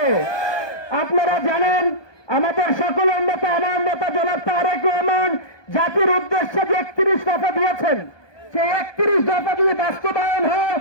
আপনারা জানেন আমাদের সকলের নেতা, আমার নেতা জনাব তারেক রহমান জাতির উদ্দেশ্যে যে 31 দফা দিয়েছেন, সেই 31 দফা যদি বাস্তবায়ন হয়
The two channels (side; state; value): right; late; 1.2 ms